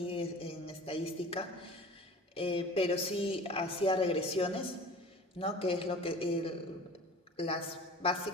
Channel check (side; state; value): both; normal; correlation 0.41